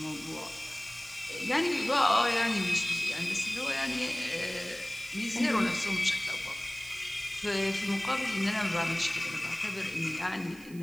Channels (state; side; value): noise; right; hiss, 21 dB below the sound